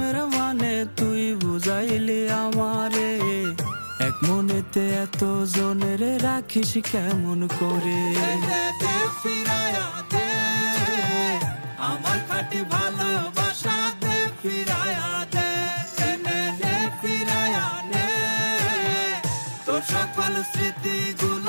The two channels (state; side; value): inverted; both; correlation -1.00